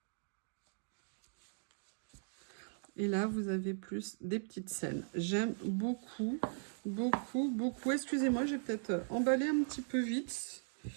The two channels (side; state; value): left; silent; digital silence